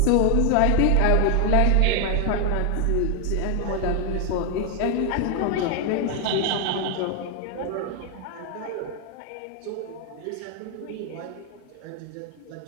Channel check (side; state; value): both; different; correlation 0.00